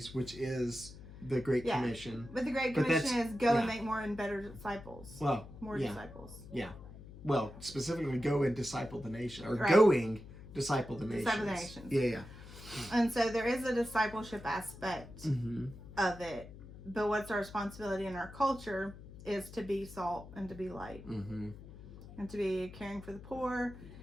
which is the Great Commission. But the Great Commission is go and make more and better disciples. Well, more disciples. Yeah. Well, specifically go and disciple the nation, or going disciple the nations. Disciple the nations. Yeah. And so there is a discipleship aspect of it, but what's our responsibility in our culture is to be salt and to be light, and to be caring for the poor,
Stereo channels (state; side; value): noise; left; hum, 16 dB below the sound